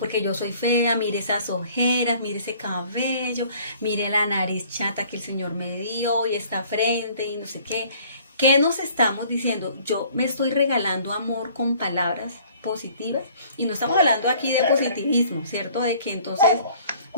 yo soy fea, mire esas ojeras, mire ese cabello, mire la nariz chata que el Señor me dio y esta frente y no sé qué. ¿Qué nos estamos diciendo? Yo me estoy regalando amor con palabras positivas, y no estamos hablando aquí de positivismo, ¿cierto? De que entonces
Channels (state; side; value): inverted; both; correlation -0.55